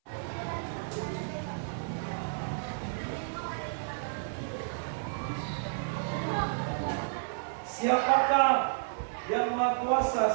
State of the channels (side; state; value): left; silent; 57 dB below the other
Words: Siapakah yang Maha